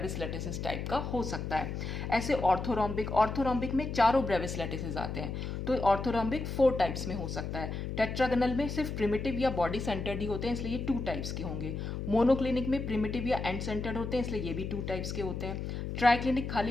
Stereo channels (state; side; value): noise; left; hum, 5 dB below the sound